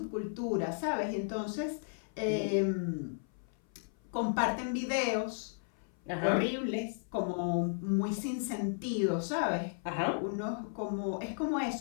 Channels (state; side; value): silent; right; 55 dB below the other